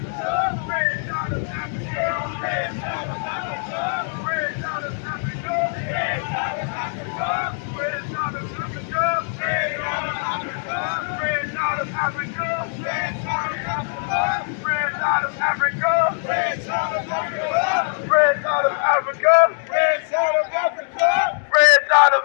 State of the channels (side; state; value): right; silent; 64 dB below the other